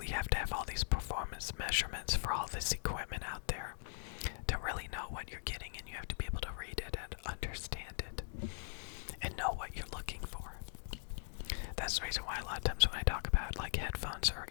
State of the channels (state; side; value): silent; right; digital silence